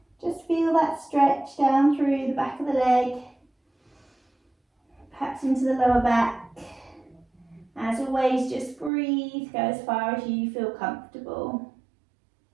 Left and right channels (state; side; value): drops out; left; at 8.9 s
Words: Just feel that stretch down through the back of the leg, perhaps into the lower back. As always, just breathe, go as far as you feel comfortable.